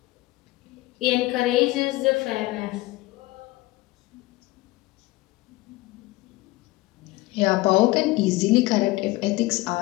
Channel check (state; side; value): quieter; right; 19.6 dB